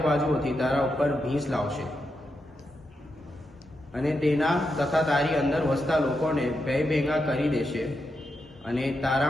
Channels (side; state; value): both; normal; correlation 0.85